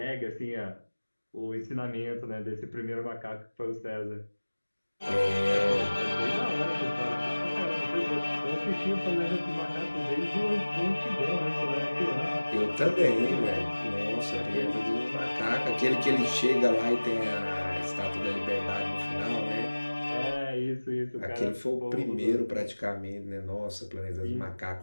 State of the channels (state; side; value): inverted; both; correlation -1.00